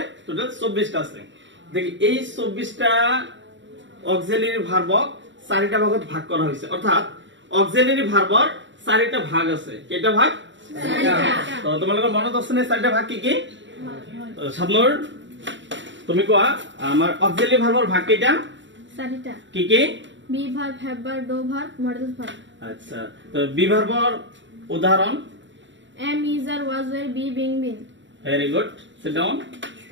টোটাল 24টা আছে দেখি এই 24টা অক্সিলারি ভার্বক চাৰিটা ভাগত ভাগ কৰা হৈছে অৰ্থাৎ অক্সিলারি ভার্বৰ চাৰিটা ভাগ আছে কেইটা ভাগ তো তোমালোকৰ মনত আছে নে চাৰিটা ভাগ কি কি সাবনুৰ তুমি কোৱা আমাৰ অক্সিলারি ভার্বৰ ভাগ কেইটা চাৰিটা কি কি be verb have verb do verb modal verb আচ্ছা তো বি ভার্বৰ উদাহৰণ am is are was were be being been very good sit down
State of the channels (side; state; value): left; late; 0.54 ms